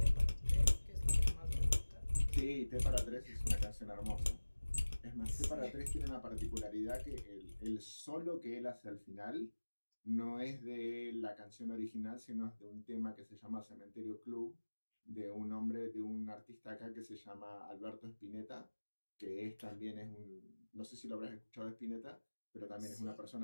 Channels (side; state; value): both; inverted; correlation -1.00